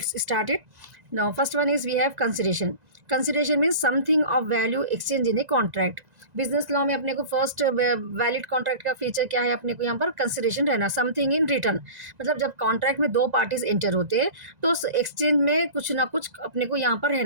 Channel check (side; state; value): left; late; 2.0 ms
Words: start it. Now, first one is we have consideration. Consideration means something of value exchange in a contract. Business law में अपने को first valid contract का feature क्या है, अपने को यहाँ पर कंसिडरेशन रहना, समथिंग इन रिटर्न। मतलब जब कॉन्ट्रैक्ट में दो पार्टीज एंटर होते हैं तो उस एक्सचेंज में कुछ ना कुछ अपने को यहाँ पर